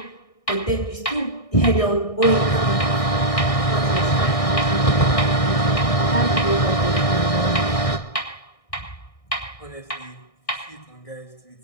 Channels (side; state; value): right; late; 1.6 ms